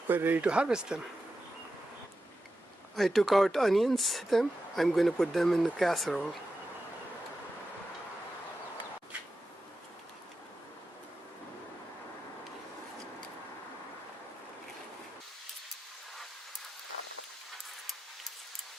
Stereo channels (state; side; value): normal; both; correlation 0.91